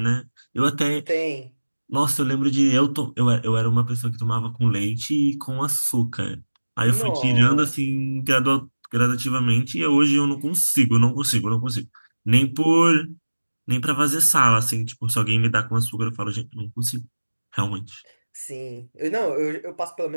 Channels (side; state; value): both; inverted; correlation -1.00